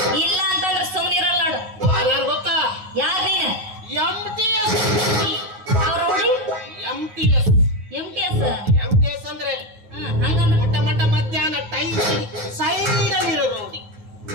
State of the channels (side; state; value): left; late; 9.5 ms